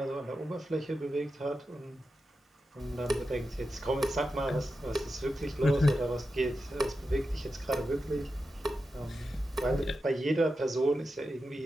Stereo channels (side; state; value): both; normal; correlation 0.90